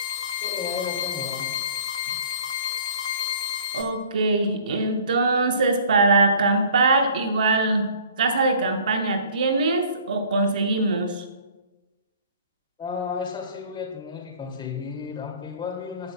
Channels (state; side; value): inverted; both; correlation -0.52